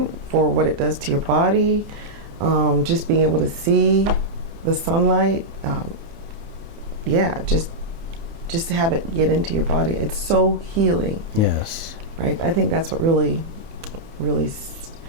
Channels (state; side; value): late; left; 30 ms